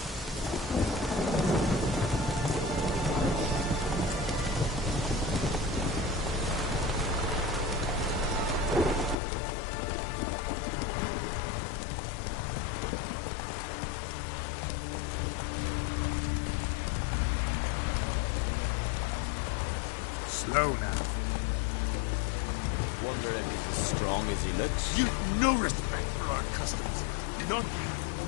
Slow now. Wonder if he's as strong as he looks. You've no respect for our customs. None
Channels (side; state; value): right; drops out; at 9.2 s